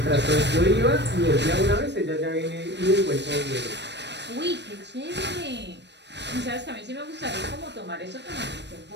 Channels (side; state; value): left; late; 0.50 ms